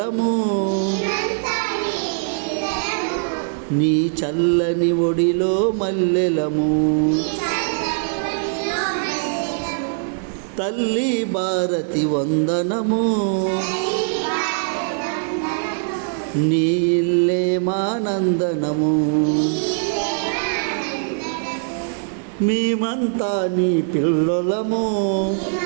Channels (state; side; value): silent; left; digital silence